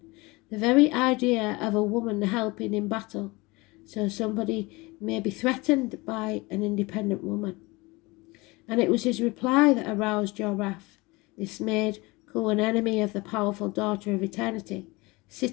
The very idea of a woman helping in battle, so somebody may be threatened by an independent woman. And it was his reply that aroused your wrath. This made Cu an enemy of the powerful daughter of eternity.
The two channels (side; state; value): right; quieter; 23.7 dB